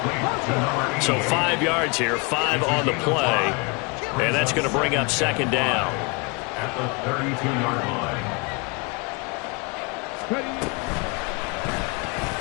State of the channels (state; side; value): quieter; right; 30.0 dB